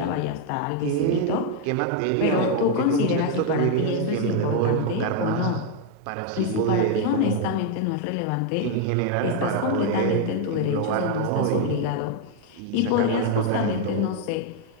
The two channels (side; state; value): both; different; correlation 0.01